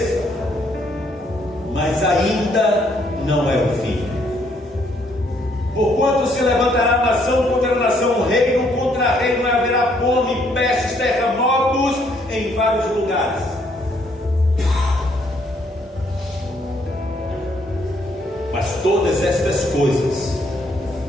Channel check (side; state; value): both; normal; correlation 0.69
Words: mas ainda não é o fim. Porquanto se levantará nação contra nação, reino contra reino, e haverá fome, pestes, terremotos em vários lugares. Mas todas estas coisas